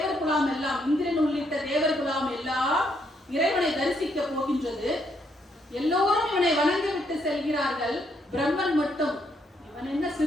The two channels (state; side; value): normal; both; correlation 0.74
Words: குலாம் எல்லாம், இந்திரன் உள்ளிட்ட தேவர் குலாம் எல்லாம் இறைவனை தரிசிக்க போகின்றது. எல்லோரும் இவனை வணங்கிவிட்டு செல்கிறார்கள். பிரம்மன் மட்டும் இவன் என்ன